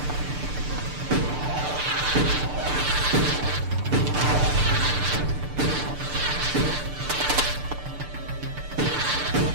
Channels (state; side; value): late; left; 6.8 ms